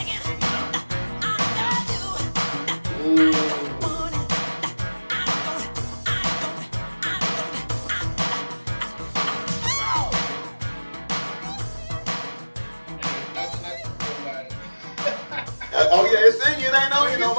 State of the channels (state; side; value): inverted; both; correlation -1.00